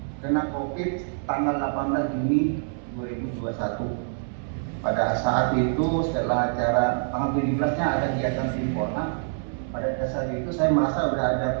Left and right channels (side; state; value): left; silent; digital silence